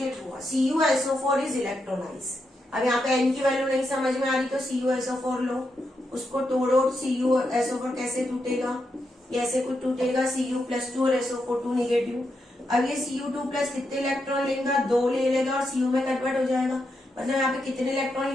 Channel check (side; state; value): both; normal; correlation 0.84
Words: हुआ, CuSO4 इज इलेक्ट्रोलाइज। अब यहाँ पे N की वैल्यू नहीं समझ में आ रही तो CuSO4 लो, उसको तोड़ो, CuSO4 कैसे टूटेगा, ये ऐसे कुछ टूटेगा, Cu+2 और SO4 2 नेगेटिव। अब ये Cu2 प्लस कितने इलेक्ट्रॉन लेगा, 2 ले लेगा और Cu में कन्वर्ट हो जाएगा, मतलब यहाँ पे कितने इलेक्ट्रॉन